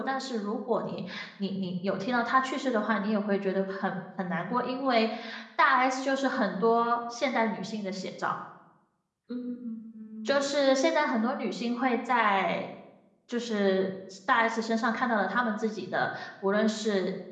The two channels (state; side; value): identical; both; correlation 1.00